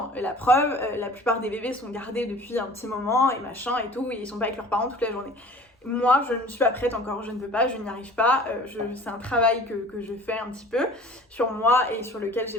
Et la preuve, la plupart des bébés sont gardés depuis un petit moment et machin et tout, et ils sont pas avec leurs parents toute la journée. Moi, je ne suis pas prête encore, je ne peux pas, je n'y arrive pas. C'est un travail que je fais un petit peu sur moi et sur lequel j'ai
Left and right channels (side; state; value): both; normal; correlation 0.45